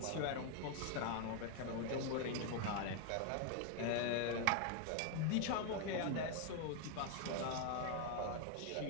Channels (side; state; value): both; different; correlation 0.01